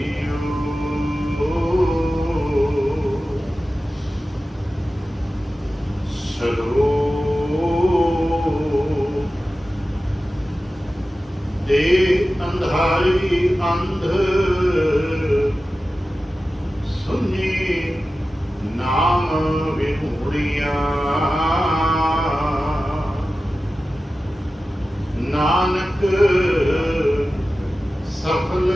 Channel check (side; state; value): both; normal; correlation 0.94